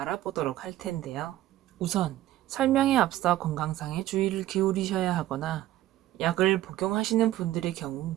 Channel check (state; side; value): quieter; left; 14.4 dB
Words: 할 텐데요. 우선 설명에 앞서 건강상에 주의를 기울이셔야 하거나 약을 복용하시는 분들의 경우